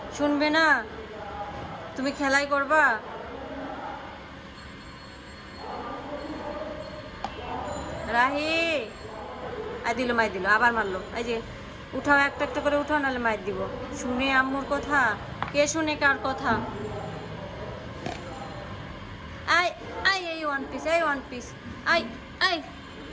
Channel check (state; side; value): identical; both; correlation 1.00